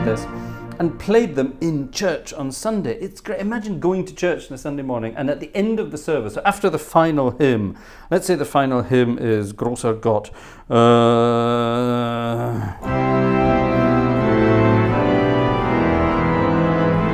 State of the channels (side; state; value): both; identical; correlation 1.00